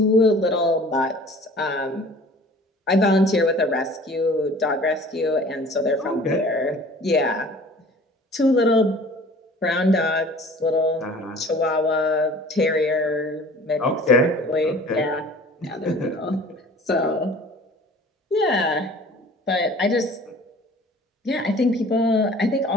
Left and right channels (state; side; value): normal; both; correlation 0.47